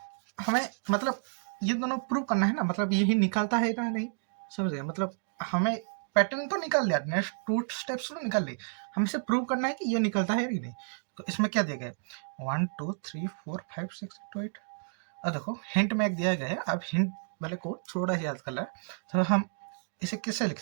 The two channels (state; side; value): silent; left; digital silence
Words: हमें मतलब ये दोनों प्रूव करना है ना, मतलब यही निकालता है ना नहीं. समझ गए. मतलब हमें पैटर्न तो निकाल लिया, नेक्स्ट 2 स्टेप्स तो निकाल ली, हमें इसे प्रूव करना है कि ये निकलता है कि नहीं. तो इसमें क्या दिया गया 1 2 3 4 5 6 2 8. अब देखो हिंट में एक दिया गया है, अब हिंट वाले को थोड़ा सा याद कर ला. तो हम इसे कैसे लिख